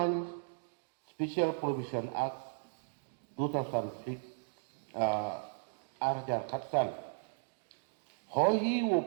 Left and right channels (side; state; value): left; silent; digital silence